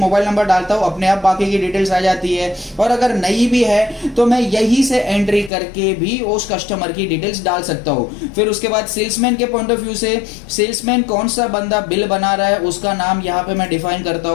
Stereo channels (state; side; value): drops out; right; at 5.5 s